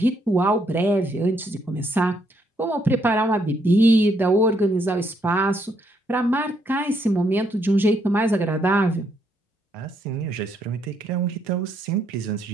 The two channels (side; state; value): both; normal; correlation 0.73